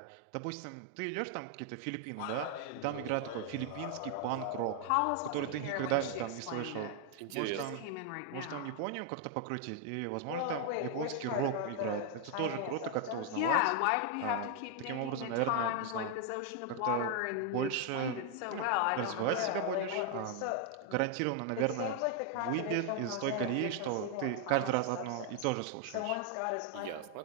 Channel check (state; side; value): different; both; correlation 0.00